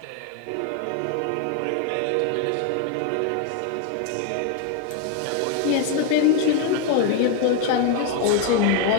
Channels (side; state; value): both; different; correlation 0.01